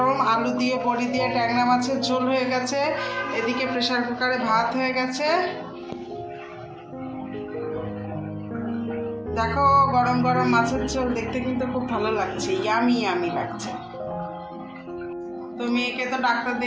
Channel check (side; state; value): both; identical; correlation 1.00